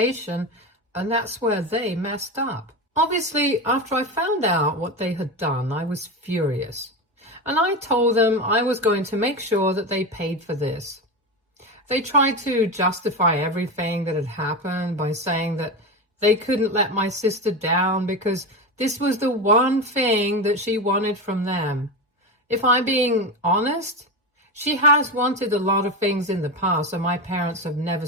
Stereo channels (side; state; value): both; normal; correlation 0.19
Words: and that's where they messed up. Obviously, after I found out what they had done, I was furious. And I told them I was going to make sure that they paid for this. They tried to justify everything that had happened by saying that they couldn't let my sister down because this was the one thing that she wanted from them. If I'm being honest, she has wanted a lot of things in the past, and my parents have never